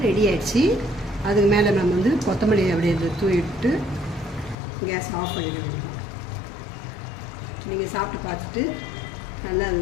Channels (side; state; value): right; drops out; at 4.5 s